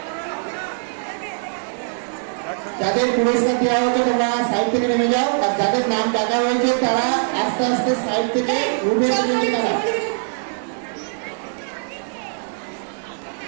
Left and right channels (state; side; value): silent; left; 61 dB below the other